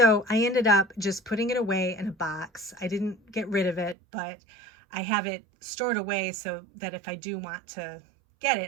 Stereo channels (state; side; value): drops out; left; at 4.0 s